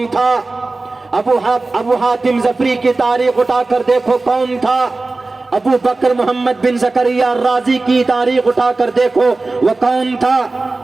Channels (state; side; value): quieter; left; 3.4 dB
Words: تھا، ابو حاتم ظفری کی تاریخ اٹھا کر دیکھو کون تھا، ابو بکر محمد بن زکریا الرازی کی تاریخ اٹھا کر دیکھو وہ کون تھا،